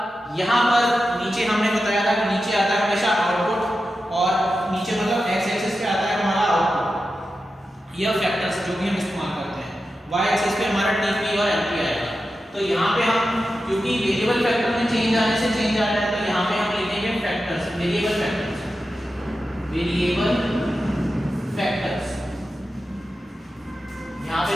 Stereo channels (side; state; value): both; normal; correlation 0.91